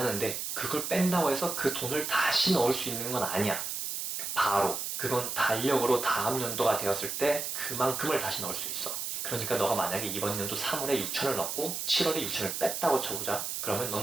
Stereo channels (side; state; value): right; noise; hiss, 3 dB below the sound